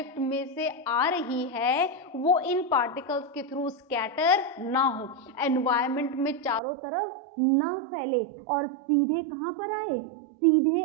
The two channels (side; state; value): left; drops out; at 6.6 s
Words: में से आ रही है वो इन पार्टिकल्स के थ्रू स्कैटर ना हो, एनवायरनमेंट में चारों तरफ ना फैले और सीधे कहां पर आए? सीधे